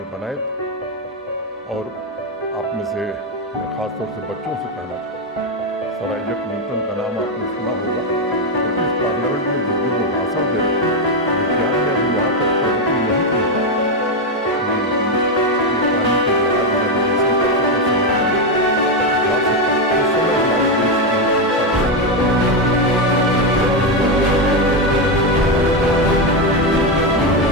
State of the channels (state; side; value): normal; both; correlation 0.07